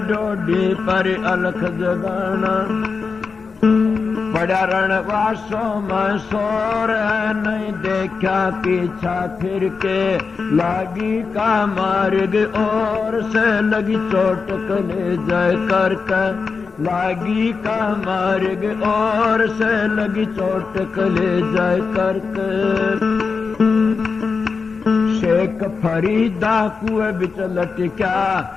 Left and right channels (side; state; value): right; quieter; 4.9 dB